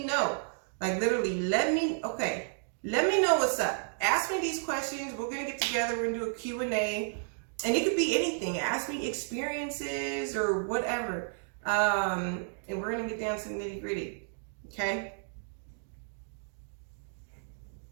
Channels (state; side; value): silent; left; digital silence